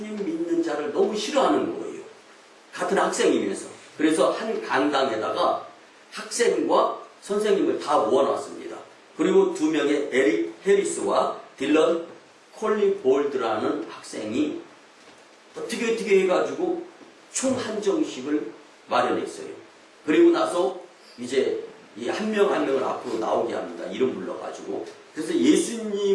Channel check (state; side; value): identical; both; correlation 1.00